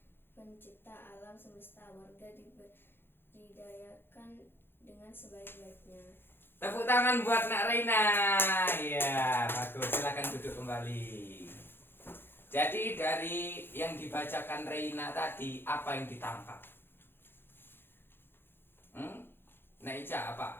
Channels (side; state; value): right; late; 0.10 ms